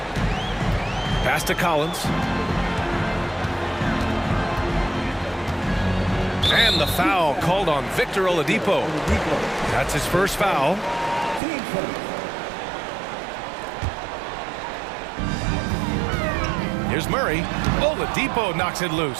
Pass to Collins. And the foul called on Victor Oladipo. That's his first foul. Here's Murray. Oladipo knocks it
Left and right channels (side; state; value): left; drops out; at 11.4 s